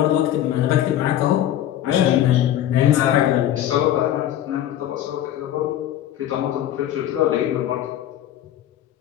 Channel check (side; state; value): right; quieter; 11.9 dB